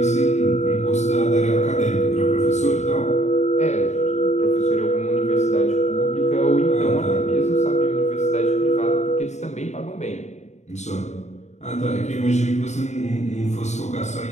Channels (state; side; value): late; right; 0.33 ms